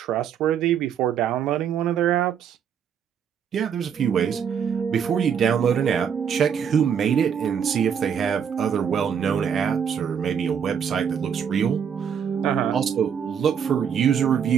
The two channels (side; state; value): left; quieter; 7.8 dB